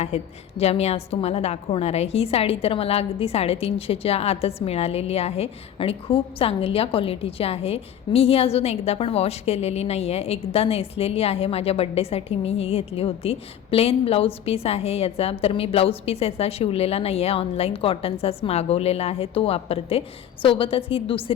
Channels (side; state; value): right; quieter; 10.0 dB